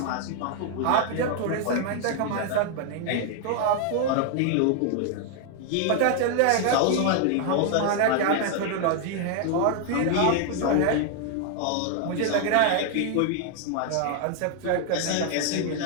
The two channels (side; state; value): both; different; correlation 0.00